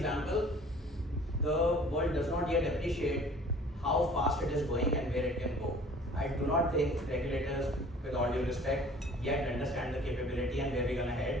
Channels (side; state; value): both; normal; correlation 0.50